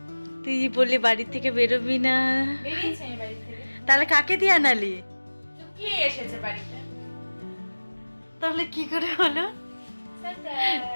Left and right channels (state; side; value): inverted; both; correlation -1.00